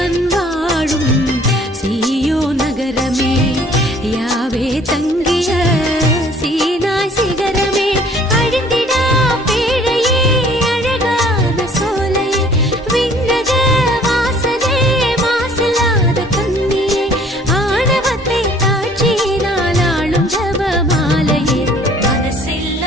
வாழும் சீயோன் நகரமே, யாவே தங்கிய சீனாய் சிகரமே. அழிந்திடா பேழையே, அழகான சோலையே, விண்ணக வாசலே, மாசில்லாத கன்னியே, ஆணவத்தை தாட்சியினால் ஆளும் ஜபமாலையே.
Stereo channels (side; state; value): both; normal; correlation 0.55